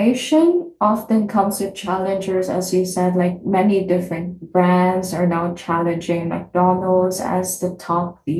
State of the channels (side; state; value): both; identical; correlation 1.00